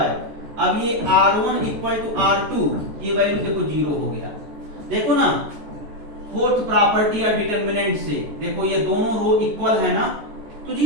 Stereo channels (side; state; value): left; late; 14 ms